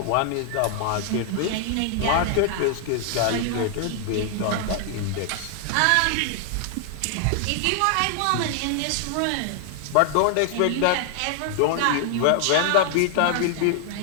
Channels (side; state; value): both; different; correlation 0.00